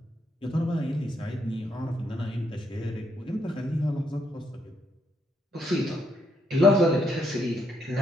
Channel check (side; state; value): both; normal; correlation 0.75